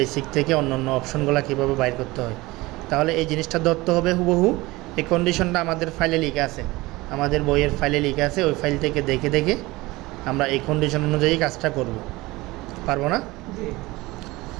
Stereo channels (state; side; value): quieter; left; 20.8 dB